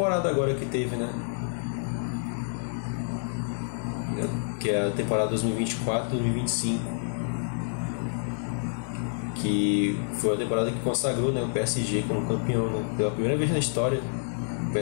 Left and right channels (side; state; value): right; silent; 59 dB below the other